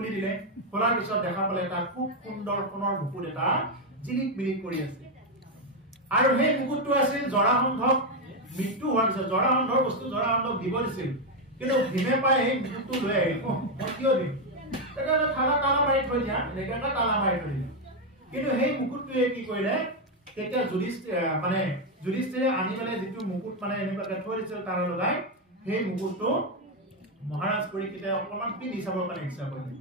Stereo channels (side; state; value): both; normal; correlation 0.05